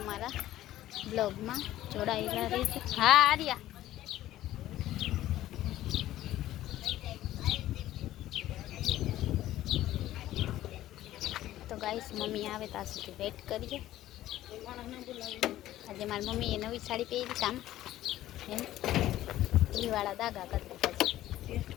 અમારા બ્લોગમાં જોડાયેલા રહેજો। હા આર્યા, તો ગાઈસ મમ્મી આવે ત્યાં સુધી વેટ કરીએ। આજે મારી મમ્મીએ નવી સાડી પહેરી, કામ એમ ઘીવાળા દાગા કરી દીધા છે।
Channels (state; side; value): quieter; right; 14.1 dB